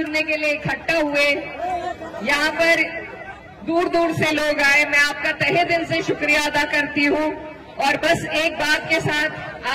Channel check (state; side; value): identical; both; correlation 1.00